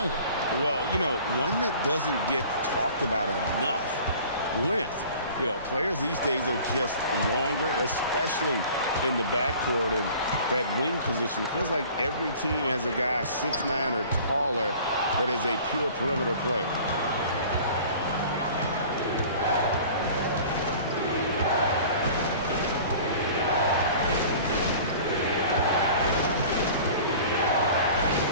Well, you know, one that doesn't get talked about enough, length. You know, players these days are just longer, especially in the backcourt, and that wing position. It feels like every team has a guy 6'9" or taller that is a pure perimeter player.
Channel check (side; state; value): both; inverted; correlation -0.45